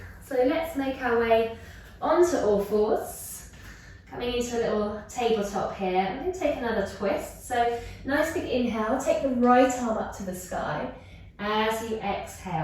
So let's make our way onto all fours. Coming into a little tabletop here. I'm going to take another twist. So nice big inhale, take the right arm up to the sky. As you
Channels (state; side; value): identical; both; correlation 1.00